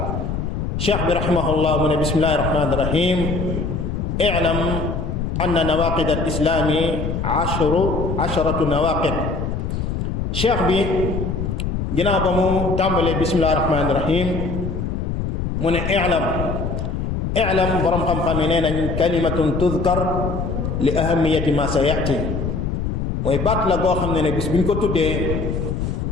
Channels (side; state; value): left; noise; rumble, 2 dB below the sound